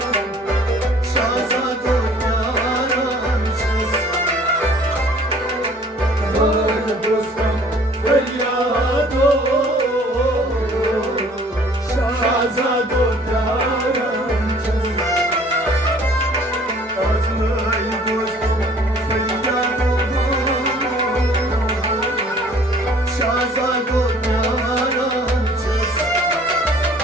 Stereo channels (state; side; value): normal; both; correlation 0.54